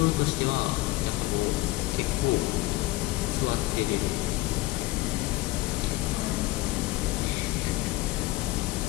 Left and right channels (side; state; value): right; quieter; 19.2 dB